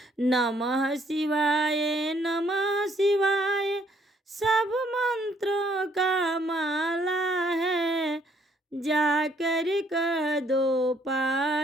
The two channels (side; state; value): both; normal; correlation 0.67